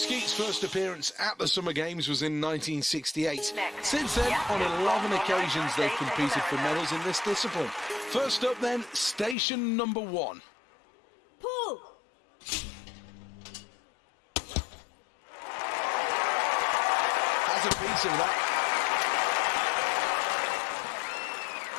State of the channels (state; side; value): drops out; right; at 9.3 s